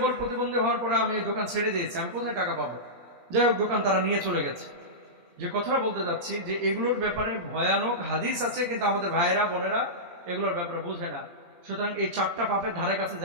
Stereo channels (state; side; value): late; left; 17 ms